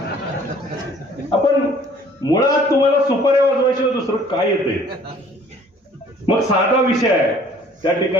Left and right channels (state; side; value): normal; both; correlation 0.55